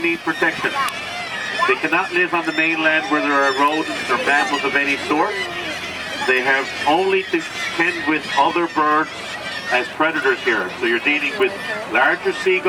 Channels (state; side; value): identical; both; correlation 1.00